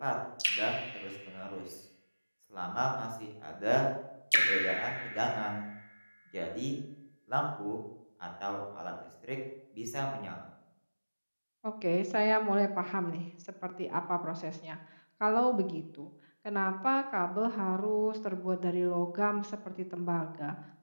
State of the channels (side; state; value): both; inverted; correlation -1.00